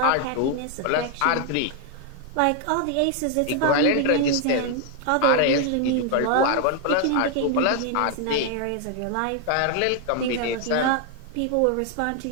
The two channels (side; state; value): both; different; correlation 0.00